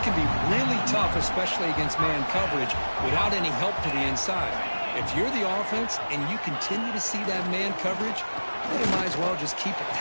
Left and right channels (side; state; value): both; inverted; correlation -1.00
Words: can be really tough, especially against man coverage, without any help to the inside. If you're the offense and you continue to see that man coverage, then you might as well just keep